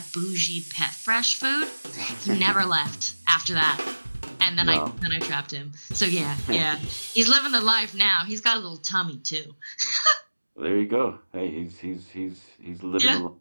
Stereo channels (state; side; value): inverted; both; correlation -1.00